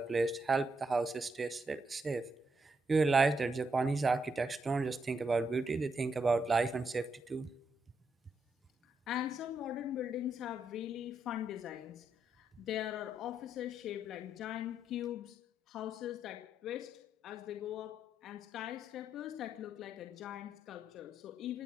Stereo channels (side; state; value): both; normal; correlation 0.79